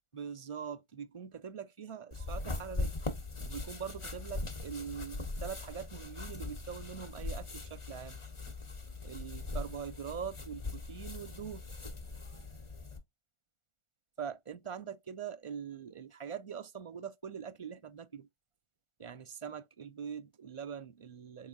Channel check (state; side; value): late; right; 1.4 ms